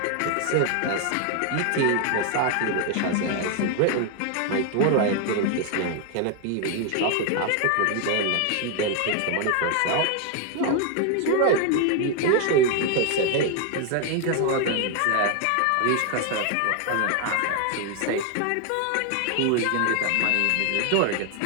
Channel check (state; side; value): different; both; correlation 0.01